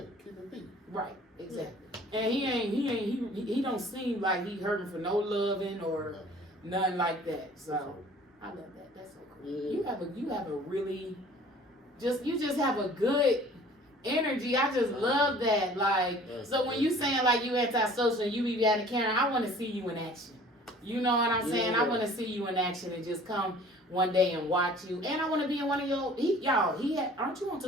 keep it beat. Right, exactly. And he don't seem like he hurting for no loving or nothing like that. So I love that. That's so cool. You have a really you just have a good energy. I just love that. Like, so when you saying like you antisocial and you be out of Karen, I want to see you in action. You know what I'm saying? Yeah. I want to see you in action and just come one day and watch you. And I want to be in one of your, aren't you on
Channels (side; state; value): both; normal; correlation 0.50